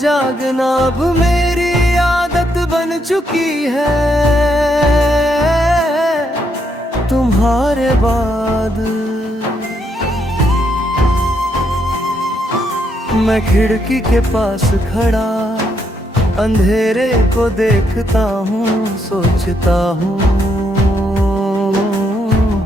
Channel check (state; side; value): normal; both; correlation 0.76